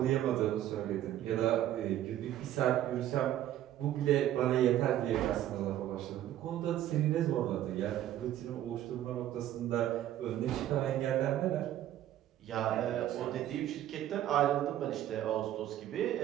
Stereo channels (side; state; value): left; quieter; 12.4 dB